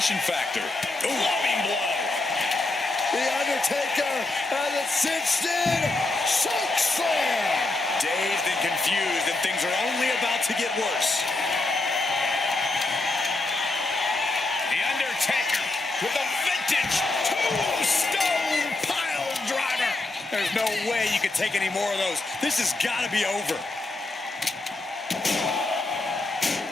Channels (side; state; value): right; quieter; 3.0 dB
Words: factor. Loving blow. The Undertaker has a cinched-in choke slam. Dazed and confused, and things are only about to get worse. The Undertaker with a vintage tombstone pile driver. There's no way you could take any more of those. This has got to be over.